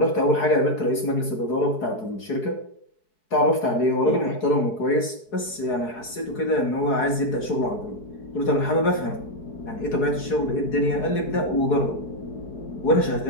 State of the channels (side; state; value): right; late; 4.7 ms